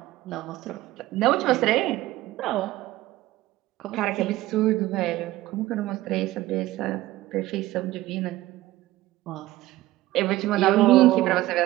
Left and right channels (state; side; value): quieter; left; 16.8 dB